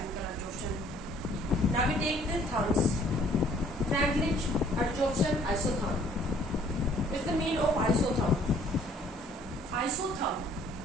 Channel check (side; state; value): both; normal; correlation 0.59